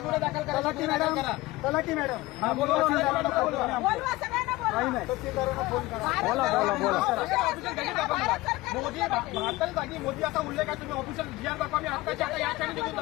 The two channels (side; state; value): right; quieter; 19.5 dB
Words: गुन्हे दाखल करा तलाठी मॅडम बोलवा मोदी भारताच्या जागी मोदी असा उल्लेख आहे. तुम्ही ऑफिशियल जीआर दाखवा. मी आत्ताच्या आता या क्षणी निघून